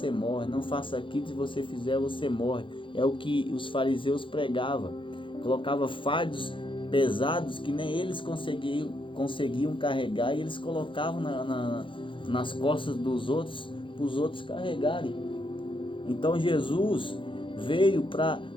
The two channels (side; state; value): right; late; 0.25 ms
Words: morre, não faça aquilo, se você fizer você morre. É o que os fariseus pregavam, colocava fardos pesados que nem eles conseguiam carregar, e eles colocavam nas costas dos outros, para os outros carregarem. Então Jesus veio para